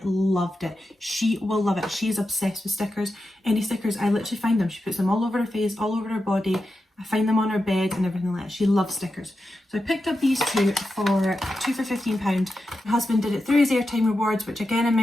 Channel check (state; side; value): normal; both; correlation 0.90